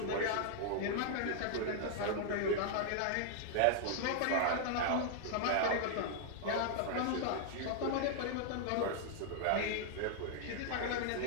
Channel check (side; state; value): both; different; correlation -0.01